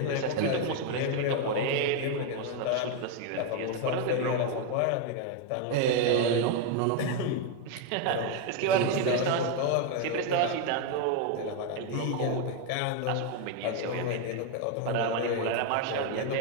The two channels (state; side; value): different; both; correlation 0.01